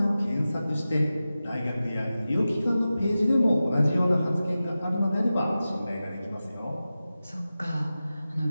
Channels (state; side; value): inverted; both; correlation -0.94